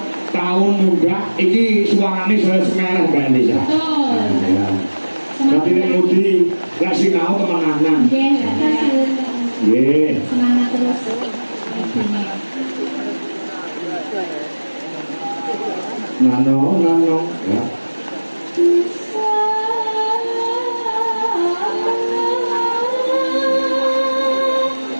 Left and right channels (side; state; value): both; inverted; correlation -1.00